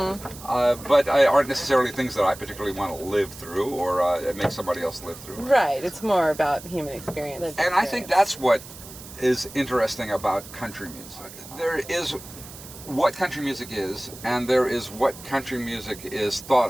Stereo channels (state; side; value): noise; right; hiss, 16 dB below the sound